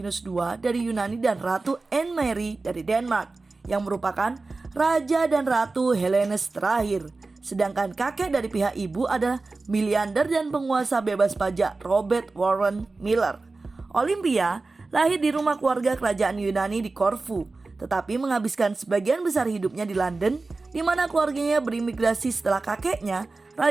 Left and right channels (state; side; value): quieter; left; 3.6 dB